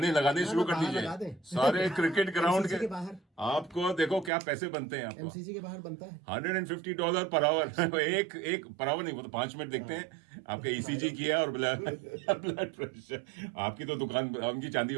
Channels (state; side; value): drops out; left; at 4.3 s